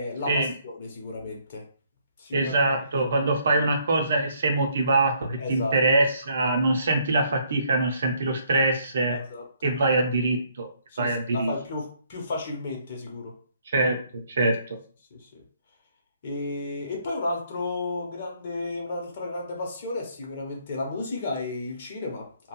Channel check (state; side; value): inverted; both; correlation -0.67